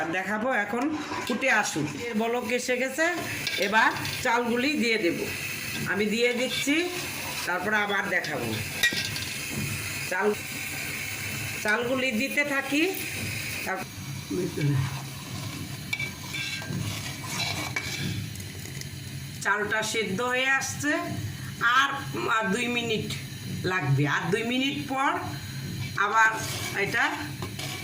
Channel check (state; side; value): identical; both; correlation 1.00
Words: এখন ফুটে আসুক, এর বলক এসে গেছে। এবার চালগুলি দিয়ে দেব, আমি দিয়ে দিচ্ছি, তারপরে আবার দেখাবো। চালগুলি দিতে থাকি। চালটা সেদ্ধ হয়ে আসছে, আর 2 মিনিট লাগবে। আর 2 মিনিট পর আবার এটা